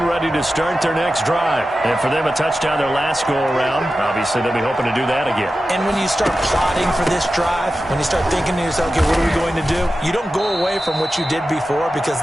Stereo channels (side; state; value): both; normal; correlation 0.93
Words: ready to start their next drive. And for them, a touchdown their last go-around. Obviously, they'll be hoping to do that again. And when you start plotting for this drive, when you start thinking to yourself, okay, what are we going to do? You don't go away from what you did before because